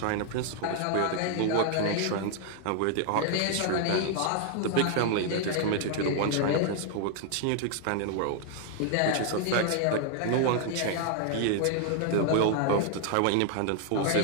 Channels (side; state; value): both; different; correlation 0.00